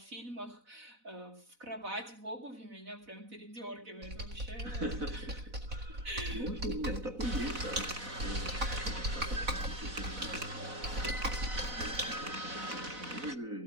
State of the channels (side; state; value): left; late; 4.0 ms